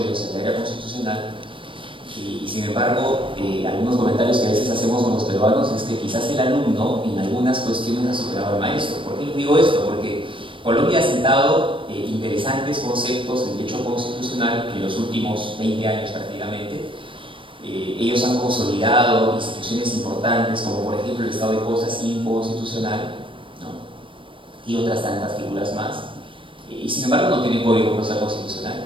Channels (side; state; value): left; late; 0.25 ms